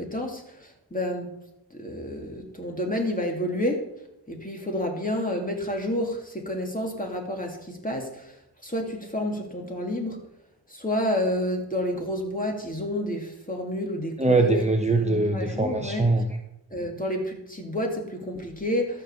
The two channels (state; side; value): normal; both; correlation 0.39